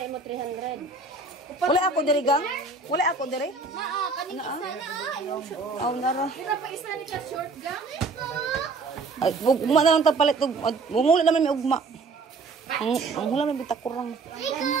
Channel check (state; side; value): quieter; left; 4.0 dB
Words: mo 300. Wala ako diri gang? Wala ako diri? Naa, kanina sana. Aw nara. Pa isa ni ka short gang. Ay, ugma na lang ta palit ug wala naman may ugma. Ang hula man bitakurang.